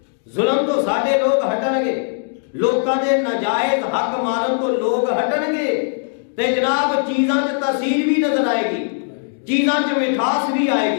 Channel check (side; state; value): right; silent; digital silence